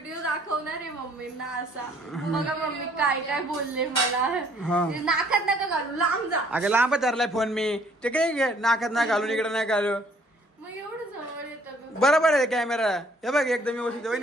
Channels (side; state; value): both; normal; correlation 0.61